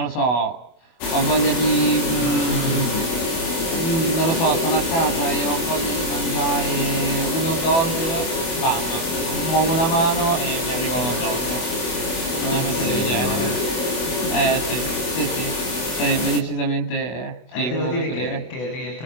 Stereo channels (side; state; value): right; late; 24 ms